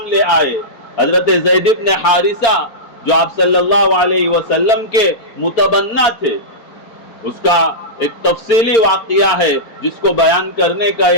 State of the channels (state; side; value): late; right; 4.4 ms